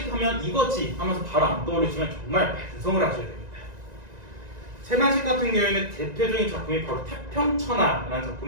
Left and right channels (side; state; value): left; late; 1.9 ms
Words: 하면 이거지 하면서 바로 안 떠오르시면 정말 반성을 하셔야 됩니다. 채만식 같은 경우에는 대표적인 작품이 바로 태평천하라는